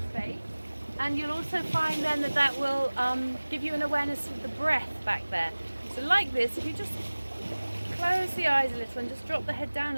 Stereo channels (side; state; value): both; inverted; correlation -1.00